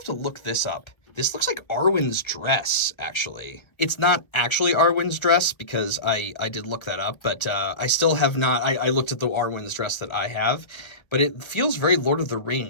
to look this up. This looks like Arwen's dress, actually. It's not actually Arwen's dress because I did look that up, but I still have not. I looked at the Arwen's dress that I have, but it feels very Lord of the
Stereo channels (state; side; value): late; right; 1.4 ms